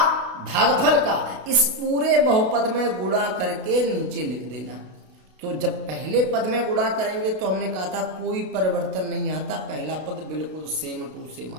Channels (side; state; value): left; late; 32 ms